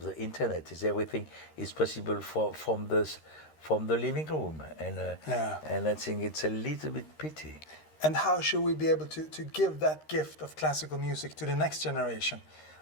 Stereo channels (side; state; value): right; late; 13 ms